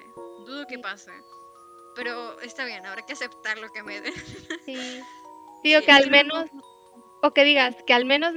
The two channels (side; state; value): both; identical; correlation 1.00